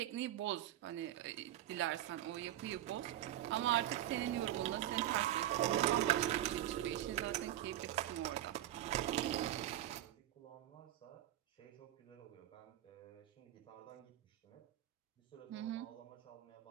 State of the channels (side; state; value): left; quieter; 13.1 dB